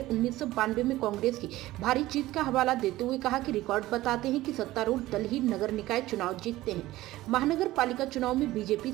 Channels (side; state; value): left; quieter; 16.8 dB